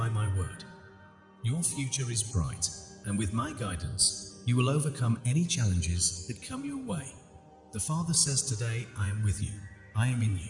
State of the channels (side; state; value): both; identical; correlation 1.00